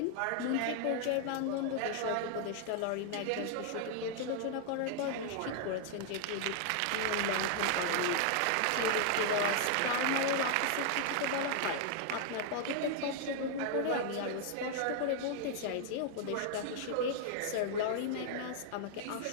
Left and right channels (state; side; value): different; both; correlation 0.00